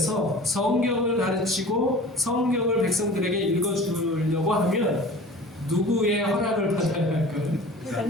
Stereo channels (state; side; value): normal; both; correlation 0.41